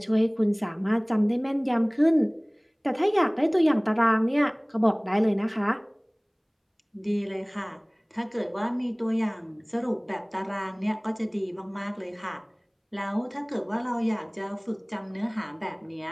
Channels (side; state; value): both; identical; correlation 1.00